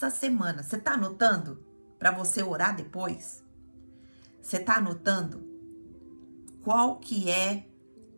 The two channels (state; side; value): inverted; both; correlation -1.00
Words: semana? Você tá anotando para você orar depois? Você tá anotando qual que é